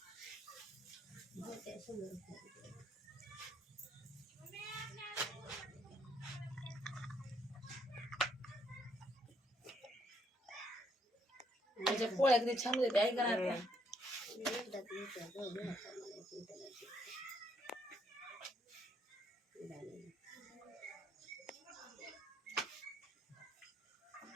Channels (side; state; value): both; normal; correlation 0.71